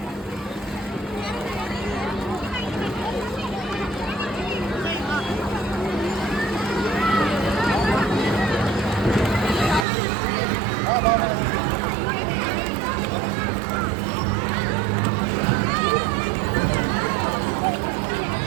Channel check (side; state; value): left; drops out; at 9.9 s